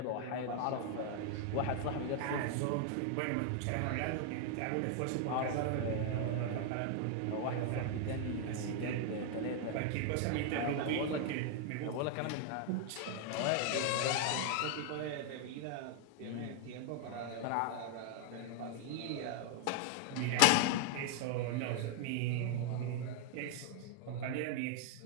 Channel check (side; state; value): both; different; correlation 0.00